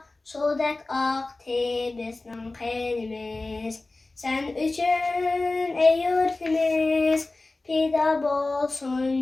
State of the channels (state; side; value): quieter; right; 3.2 dB